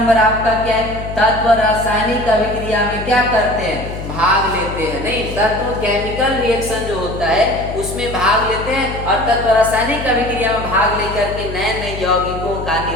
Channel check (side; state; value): left; noise; hum, 8 dB below the sound